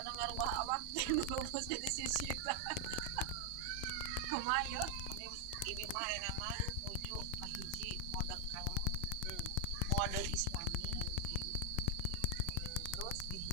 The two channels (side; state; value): both; different; correlation 0.00